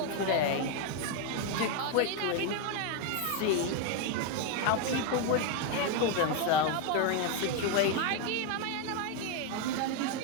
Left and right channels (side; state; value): both; different; correlation 0.01